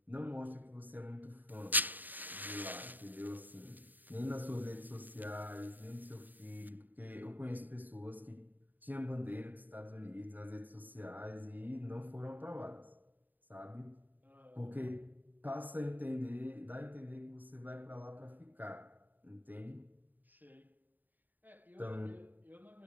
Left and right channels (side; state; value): left; late; 0.087 ms